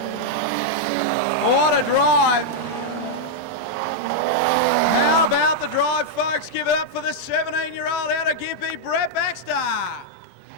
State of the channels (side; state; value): both; normal; correlation -0.03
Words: What a drive. The drive, folks. Give it up for the 17-year-old out of Gympie, Brett Baxter.